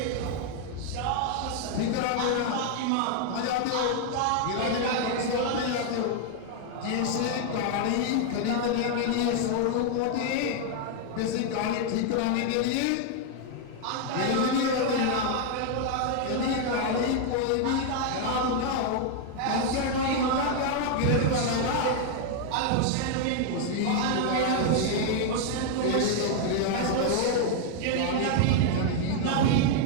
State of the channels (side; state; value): both; different; correlation 0.00